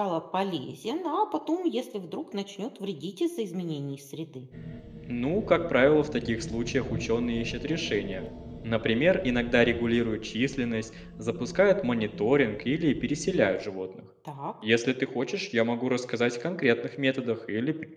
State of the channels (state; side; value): identical; both; correlation 1.00